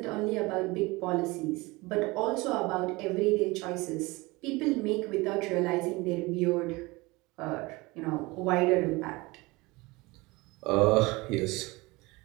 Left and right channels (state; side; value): quieter; left; 23.2 dB